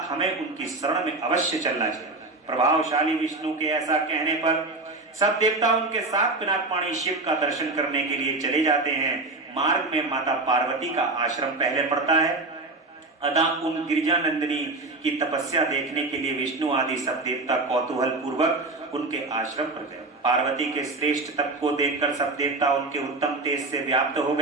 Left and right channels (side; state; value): left; quieter; 3.2 dB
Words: हमें उनकी शरण में अवश्य चलना चाहिए। प्रभावशाली विष्णु के ऐसा कहने पर सब देवता उनके साथ पिनाकपाणी शिव का दर्शन करने के लिए चले जाते हैं। मार्ग में माता पार्वती का आश्रम पहले पड़ता है। अतः उन गिरिजा नंदिनी की तपस्या देखने के लिए विष्णु आदि सब देवता कौतूहल पूर्वक उनके आश्रम पर गए। पार्वती के श्रेष्ठ तप को देखकर सब देवता उनके उत्तम तेज से व्याप्त हो